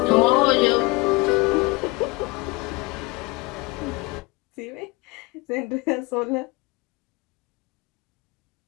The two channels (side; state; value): right; quieter; 24.2 dB